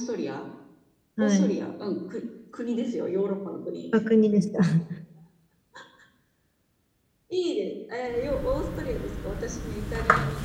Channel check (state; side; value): identical; both; correlation 1.00